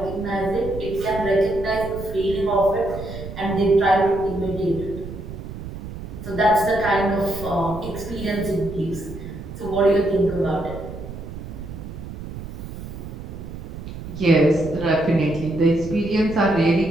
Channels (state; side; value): noise; right; rumble, 10 dB below the sound